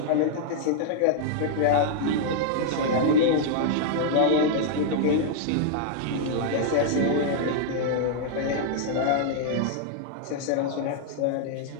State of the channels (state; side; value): different; both; correlation -0.01